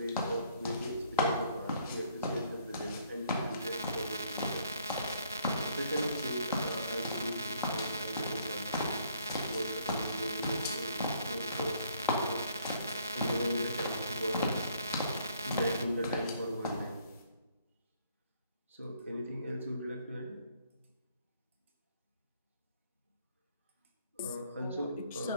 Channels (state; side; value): inverted; both; correlation -0.65